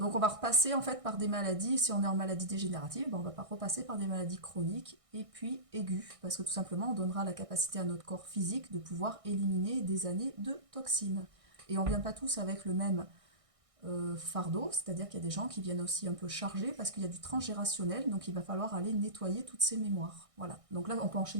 on va repasser en fait par des maladies, si on est en maladie dégénérative, on va pas repasser par des maladies chroniques et puis aiguës, parce que tout simplement on donnera la capacité à notre corps physique de pouvoir éliminer des années de toxines. Et on vient pas tous avec le même fardeau, c'est-à-dire qu'il y a des gens qui viennent aussi un peu chargés parce qu'il y a du transgérationnel, donc il va falloir aller nettoyer toutes ces mémoires. Voilà. Donc là on peut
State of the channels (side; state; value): left; late; 1.6 ms